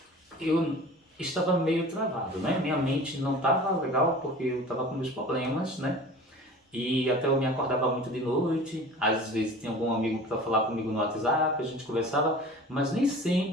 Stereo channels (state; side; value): normal; both; correlation 0.40